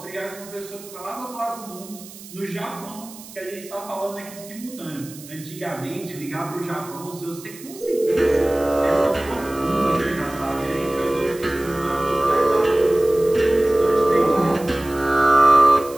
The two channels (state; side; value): noise; right; hiss, 17 dB below the sound